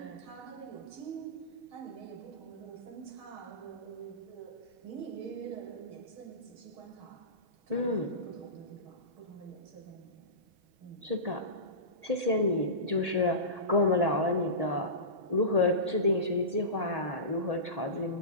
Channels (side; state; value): left; late; 6.3 ms